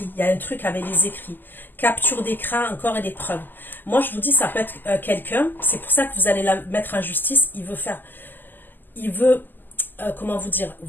Il y a un truc avec les écrits. Capture d'écran, encore et des preuves. Moi, je vous dis, ça peut être quelqu'un. C'est pour ça que vous allez la mettre en justice. Il veut, comment vous dire,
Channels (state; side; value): late; right; 0.089 ms